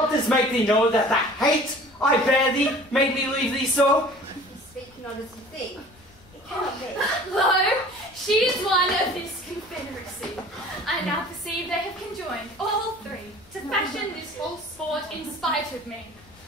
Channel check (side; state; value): left; noise; rumble, 27 dB below the sound